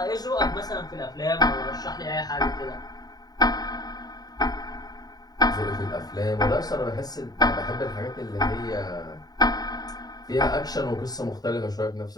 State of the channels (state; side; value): late; right; 0.19 ms